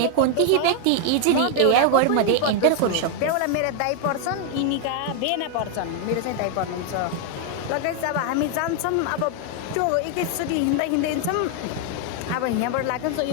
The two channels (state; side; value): different; both; correlation 0.00